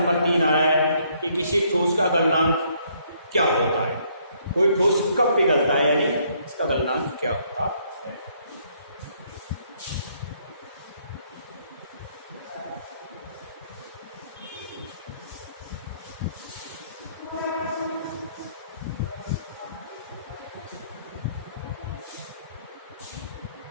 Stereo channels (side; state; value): both; inverted; correlation -0.67